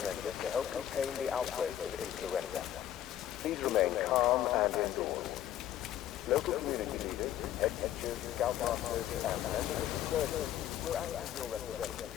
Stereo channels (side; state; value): right; quieter; 11.8 dB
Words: to help contain the outbreak of influenza. Please remain calm and indoors. Local community leaders, head teachers, scoutmasters, and members of the clergy will act as your